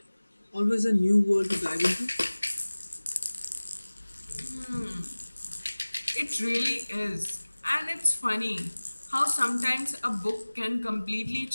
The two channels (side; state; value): both; inverted; correlation -1.00